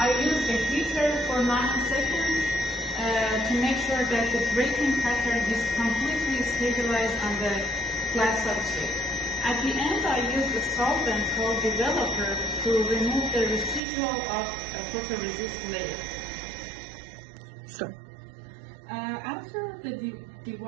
use the heater for 90 seconds to make sure that the grating pattern is completely stabilized on the glass substrate. At the end, I use a solvent called developer to remove the residual of a photoresist layer. Sure. After the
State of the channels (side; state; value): left; drops out; at 13.8 s